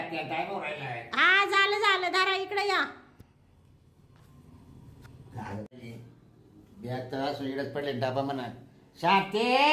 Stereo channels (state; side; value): identical; both; correlation 1.00